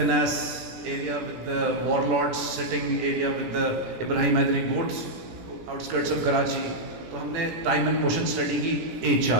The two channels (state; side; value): late; left; 17 ms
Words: area with the warlords sitting area with the Ibrahim Hyderi گوٹس آؤٹسکرٹس آف کراچی. تو ہم نے time and motion study کی. H